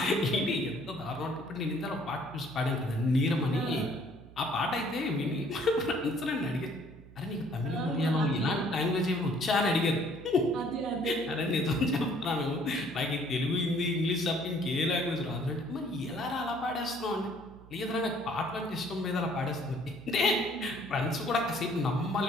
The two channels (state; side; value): noise; right; hum, 20 dB below the sound